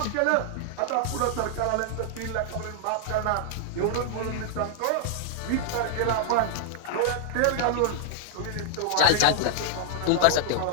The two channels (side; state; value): both; different; correlation -0.01